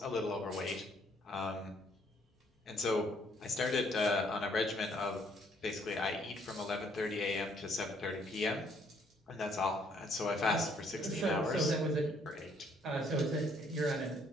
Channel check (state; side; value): normal; both; correlation 0.66